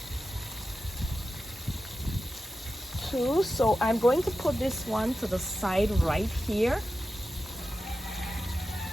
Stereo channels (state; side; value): normal; both; correlation 0.92